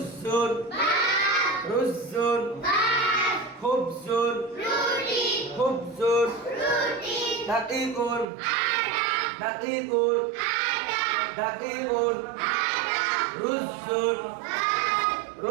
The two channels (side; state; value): left; drops out; at 8.2 s